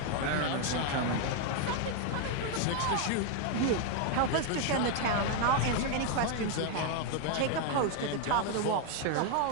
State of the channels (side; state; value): both; different; correlation 0.00